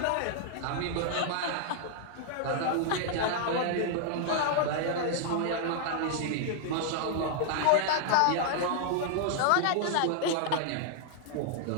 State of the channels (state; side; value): different; both; correlation -0.01